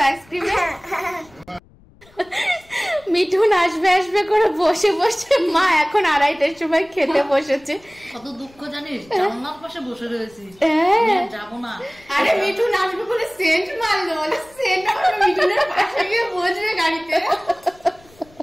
আইসক্রিমে? মিঠুন আসবে আসবে করে বসে বসে মা এখন 2:30টার সময় খেতে বসেছে। কত দুঃখ জানিস, জানলার পাশে বসে রয়েছি, যাবো না। আরে মিঠুন আসবে বলে সেন্ট মারলো, বলে সেন্ট আমার মিঠুনের পাশে গিয়ে বসবে গাড়িতে।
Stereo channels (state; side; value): noise; left; rumble, 28 dB below the sound